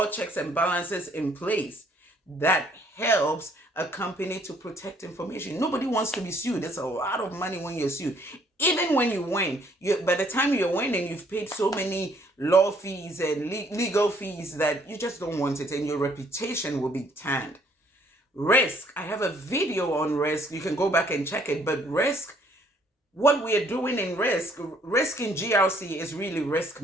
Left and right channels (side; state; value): both; normal; correlation 0.64